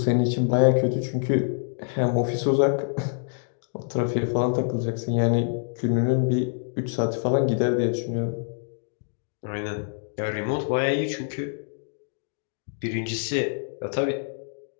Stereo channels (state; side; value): silent; right; digital silence